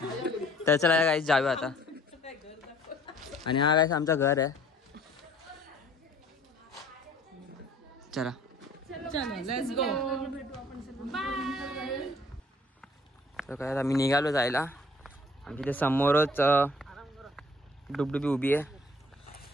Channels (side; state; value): both; normal; correlation 0.56